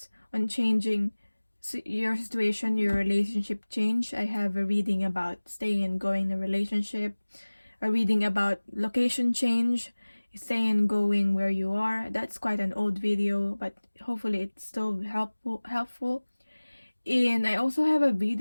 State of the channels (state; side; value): inverted; both; correlation -1.00